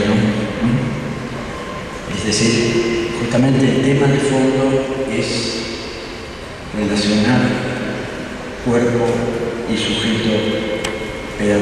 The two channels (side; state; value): both; identical; correlation 1.00